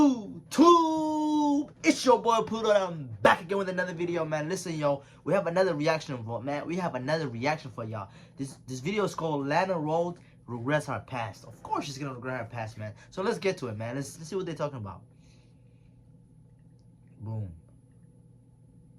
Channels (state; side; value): identical; both; correlation 1.00